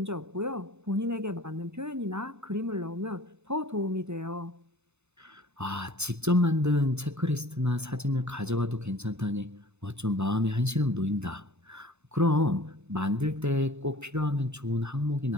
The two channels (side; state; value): left; late; 0.82 ms